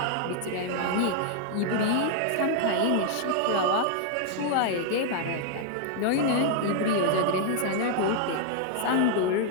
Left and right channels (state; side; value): different; both; correlation 0.00